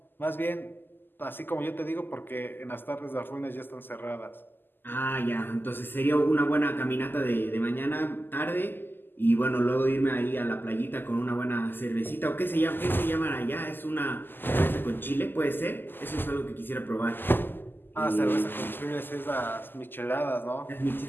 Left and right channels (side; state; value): right; late; 0.094 ms